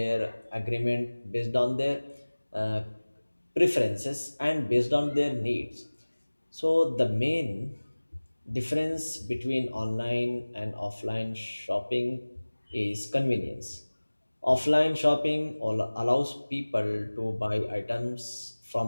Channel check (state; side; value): inverted; both; correlation -1.00